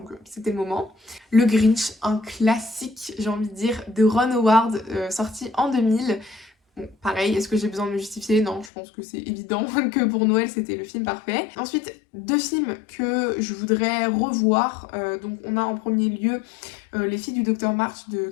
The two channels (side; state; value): right; drops out; at 8.7 s